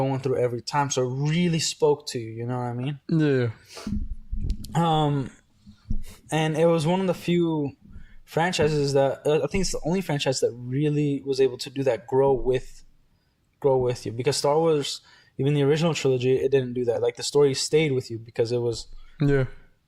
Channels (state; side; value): identical; both; correlation 1.00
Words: through every time. So it really spoke to you, you know what I mean? Yeah. And it was one of the few franchises that I think it's the only franchise that really was able to do that, grow with you. Because Star Wars, even the original trilogy, it didn't do that. Like, the story stayed with you because it was